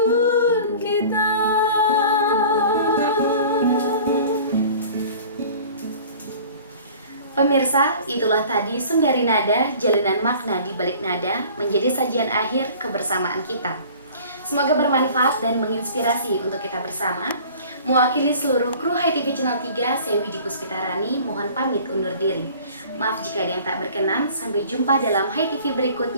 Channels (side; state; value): both; inverted; correlation -0.46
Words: kita. Pemirsa, itulah tadi Sundari Nada, jalinan makna di balik nada, menjadi sajian akhir kebersamaan kita. Semoga bermanfaat dan menginspirasi untuk kita bersama. Mewakili seluruh kru Hai TV Channel 3, saya Widi Puspitarani, mohon pamit undur diri. Maaf jika ada yang tak berkenan, sampai jumpa dalam Hai TV